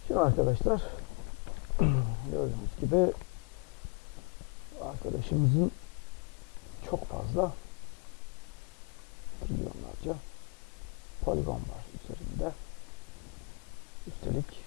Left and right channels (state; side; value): quieter; right; 32.0 dB